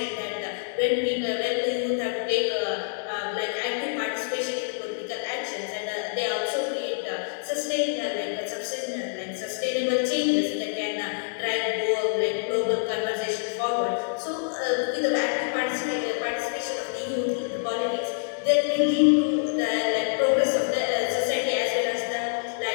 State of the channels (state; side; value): silent; right; digital silence